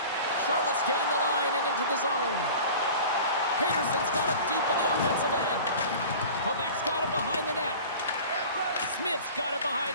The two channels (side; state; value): both; inverted; correlation -0.40